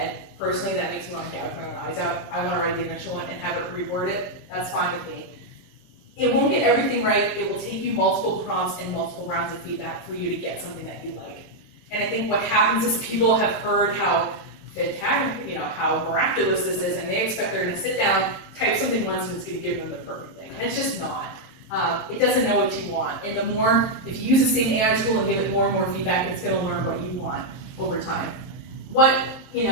Personally, that makes me want to gouge my own eyes out. I want to write the initial one and have it reword it. That's fine with me. It won't get everything right. It will take you multiple prompts and multiple rounds of feedback for you to get something that you like. And I think what happens is people have heard how fantastic, you know, how miraculous this is, and they expect they're going to sit down, type something once, and it's going to give them the perfect thing. And it's just not. It doesn't know what you want. And the more, if you use the same AI tool and give it more and more feedback, it's going to learn what you want over time. What you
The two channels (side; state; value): right; late; 23 ms